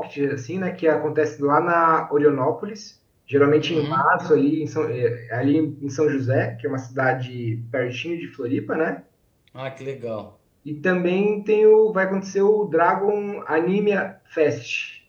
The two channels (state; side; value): identical; both; correlation 1.00